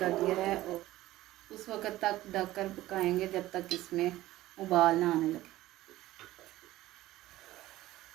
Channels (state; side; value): quieter; left; 16.0 dB